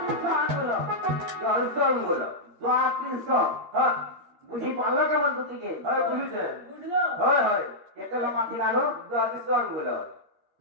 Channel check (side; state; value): left; late; 13 ms